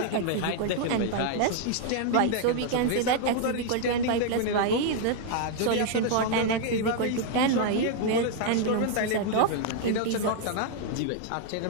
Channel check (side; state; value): both; different; correlation 0.00